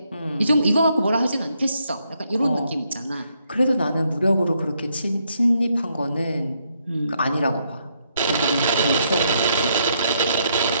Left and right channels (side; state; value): both; inverted; correlation -0.75